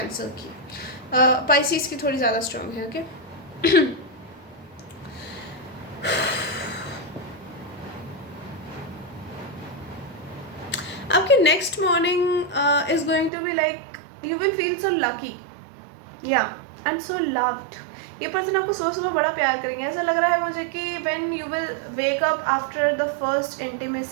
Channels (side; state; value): left; drops out; at 13.3 s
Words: की। पाइसिस की थोड़ी ज़्यादा स्ट्रॉन्ग है, ओके। आपकी next morning is going to be like you will feel so lucky, yeah and so loved. ये पर्सन आपको सुबह सुबह बड़ा प्यार करेंगे, ऐसा लग रहा है मुझे कि when you will wake up after the first